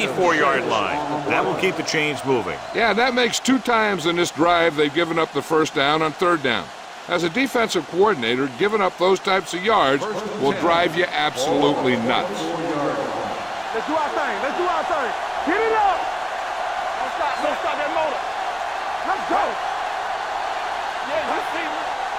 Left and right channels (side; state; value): both; identical; correlation 1.00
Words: line. That will keep the chains moving. Yeah, that makes 2 times in this drive they've given up the 1st down on 3rd down. As a defensive coordinator, giving up those types of yards will drive you absolutely nuts. Let's do our thing. Get it up. Don't stop that motor. Let's go. Yeah, you see me.